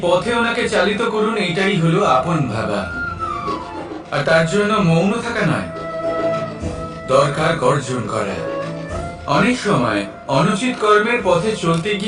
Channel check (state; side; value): identical; both; correlation 1.00